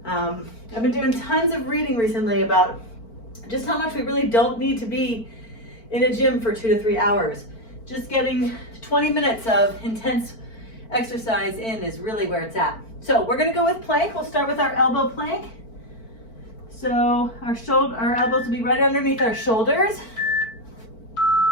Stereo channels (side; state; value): right; late; 4.5 ms